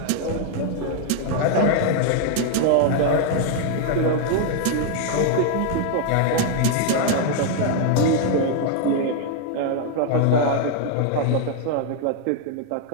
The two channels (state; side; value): different; both; correlation 0.00